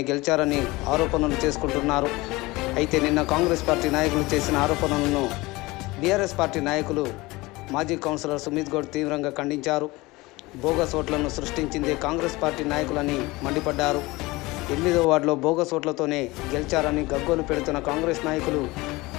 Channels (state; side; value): quieter; right; 21.6 dB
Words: గెలిచారని ఆరోపణలు చేసుకుంటున్నారు. అయితే నిన్న కాంగ్రెస్ పార్టీ నాయకులు చేసిన ఆరోపణలను బీఆర్ఎస్ పార్టీ నాయకులు మాజీ కౌన్సిలర్ సుమిత్ గౌడ్ తీవ్రంగా ఖండించారు. బోగస్ ఓట్లను సృష్టించిందే కాంగ్రెస్ పార్టీ నాయకులని మండిపడ్డారు. 8వ వార్డులో బోగస్ ఓట్లతోనే గెలిచారని గగ్గోలు పెడుతున్న కాంగ్రెస్ నాయకులు